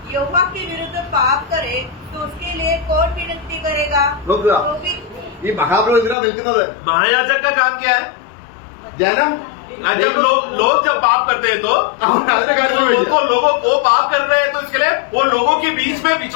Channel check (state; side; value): drops out; right; at 6.2 s